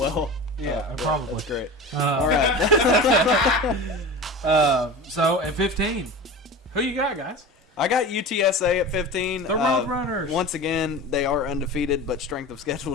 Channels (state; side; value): normal; both; correlation 0.32